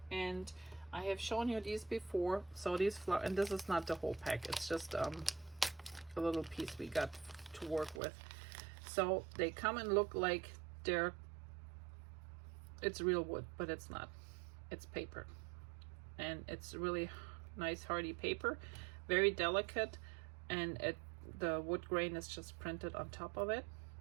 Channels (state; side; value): drops out; left; at 8.0 s